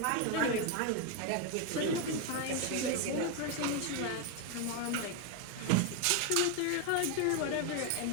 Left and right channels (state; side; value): different; both; correlation 0.02